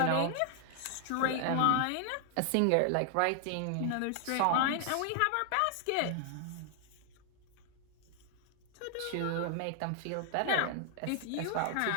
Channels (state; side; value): different; both; correlation 0.00